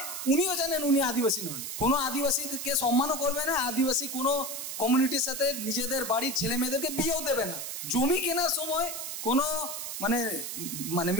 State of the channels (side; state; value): right; noise; hiss, 6 dB below the sound